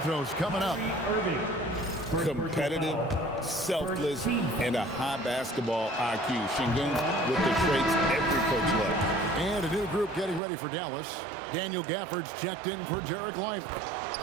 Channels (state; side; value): drops out; left; at 10.4 s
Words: coming up. Competitive, selfless, and a high basketball IQ. Şengün with the traits every coach loves. And a new group getting ready for Dallas. Daniel Gafford's checked in for Jarek Lively.